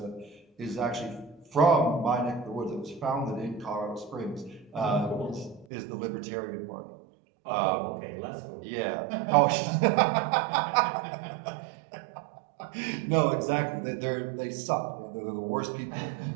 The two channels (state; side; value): drops out; left; at 5.7 s